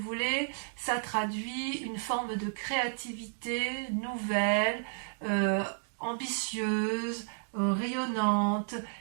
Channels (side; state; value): left; silent; digital silence